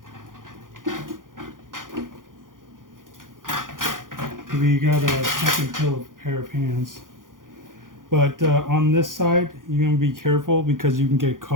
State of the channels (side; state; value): left; late; 0.89 ms